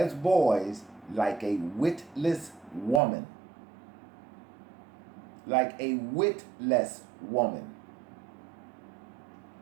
boys like a witless woman. Like a witless woman.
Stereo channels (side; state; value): left; drops out; at 3.0 s